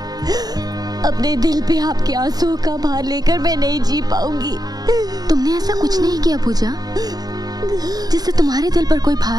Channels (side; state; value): left; late; 0.19 ms